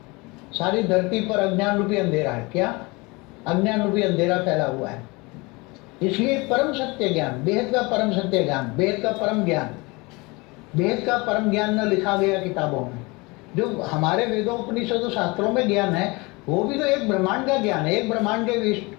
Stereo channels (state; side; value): quieter; right; 25.5 dB